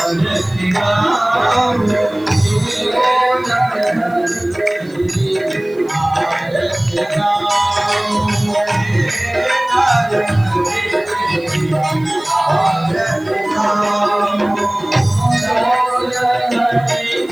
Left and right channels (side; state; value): right; noise; hiss, 29 dB below the sound